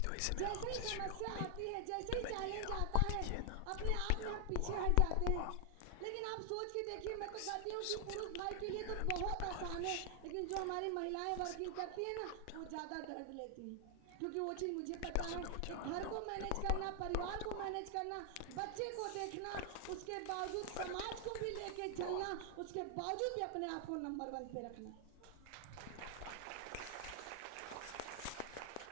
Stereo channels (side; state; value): both; different; correlation 0.00